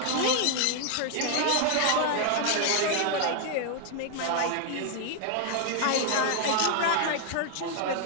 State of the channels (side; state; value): both; different; correlation 0.00